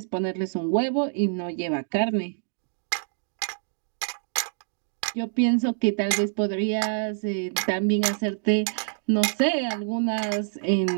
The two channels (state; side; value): silent; left; digital silence